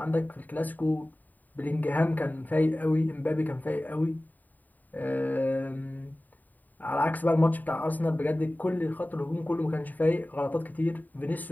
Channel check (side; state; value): right; late; 0.085 ms